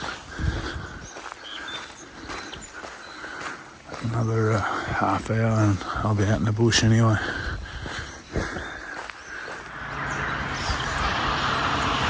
Another half hour and I'll be out in the bush anyway.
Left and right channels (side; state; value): both; identical; correlation 1.00